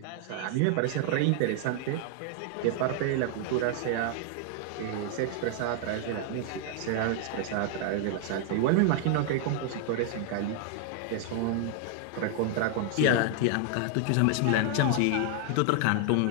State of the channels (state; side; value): different; both; correlation 0.00